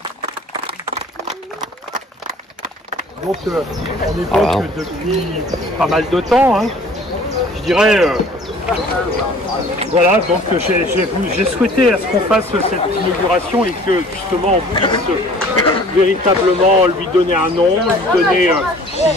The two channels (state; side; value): normal; both; correlation 0.50